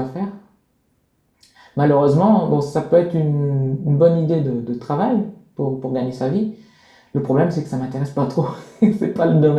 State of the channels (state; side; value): identical; both; correlation 1.00